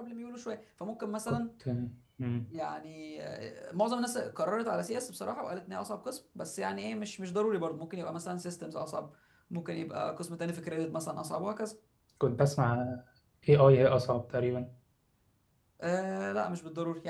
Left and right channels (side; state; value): both; identical; correlation 1.00